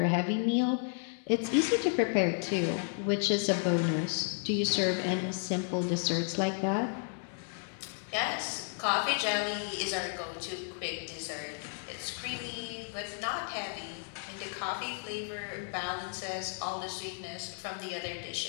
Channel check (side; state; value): right; silent; 56 dB below the other